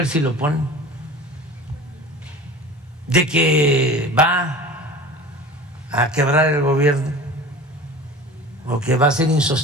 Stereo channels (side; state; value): both; normal; correlation 0.38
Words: si lo ponen, de que va a quebrar el gobierno o que va a ser